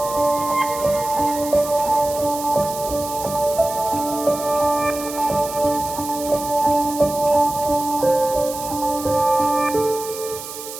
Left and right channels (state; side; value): noise; right; hiss, 11 dB below the sound